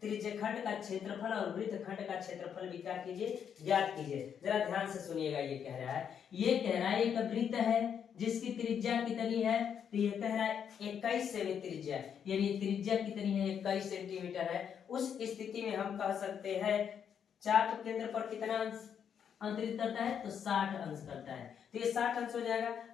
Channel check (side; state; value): right; quieter; 8.0 dB